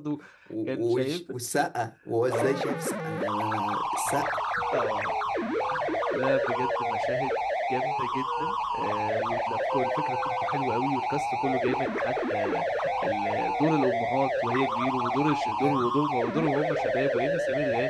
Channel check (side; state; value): both; identical; correlation 1.00